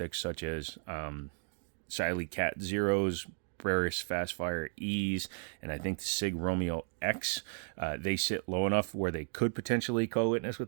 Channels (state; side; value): silent; left; digital silence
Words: such as Siley Cat Zeros, Breris Fastfire E's, and I think the Sig Romeo X. They sit low enough where they could potentially co-witness with